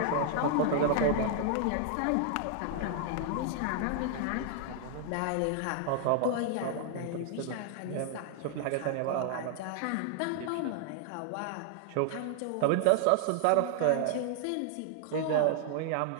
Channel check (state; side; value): different; both; correlation 0.00